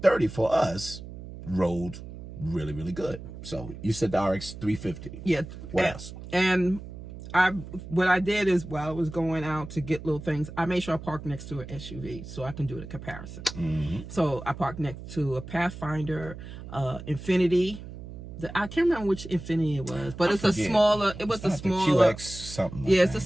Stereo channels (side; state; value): right; noise; hum, 12 dB below the sound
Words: for us rode really, really good. So you said the RX 350. Yeah. What else? And what I did is while I was going out to get little things, I made sure I parked next to an SUV so I can do the comparison. Mm-hmm. So I parked next to a Pathfinder, Infinity. I can't remember which Infinity it was, but it's a smaller. It was a smaller QX something. Yeah, it's a